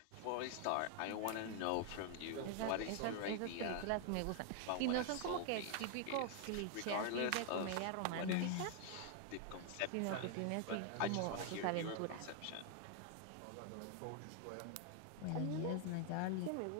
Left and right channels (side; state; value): both; different; correlation 0.00